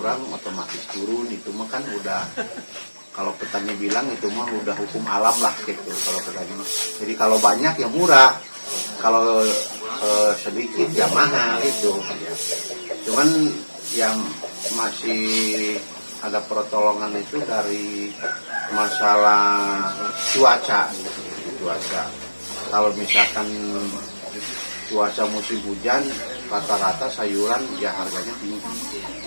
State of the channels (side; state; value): both; inverted; correlation -1.00